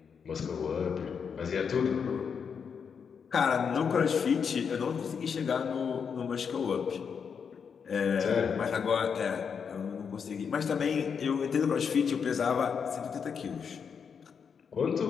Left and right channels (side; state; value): right; quieter; 6.6 dB